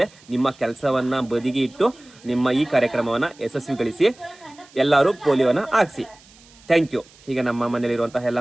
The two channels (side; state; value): right; noise; hiss, 26 dB below the sound